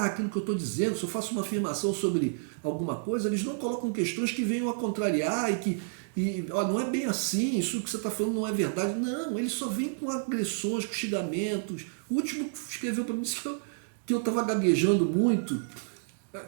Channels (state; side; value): silent; left; digital silence